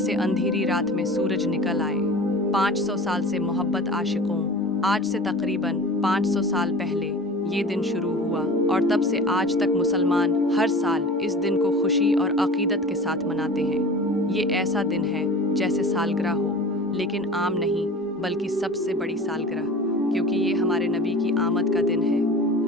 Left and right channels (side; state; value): both; normal; correlation 0.38